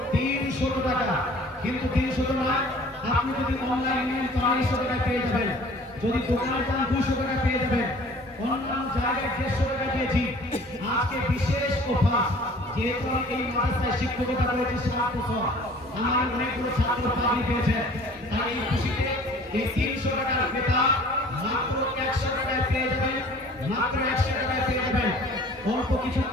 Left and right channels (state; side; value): normal; both; correlation 0.49